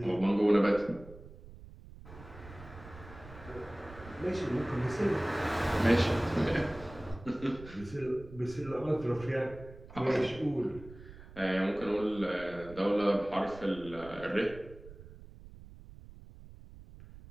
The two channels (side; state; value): right; noise; rumble, 17 dB below the sound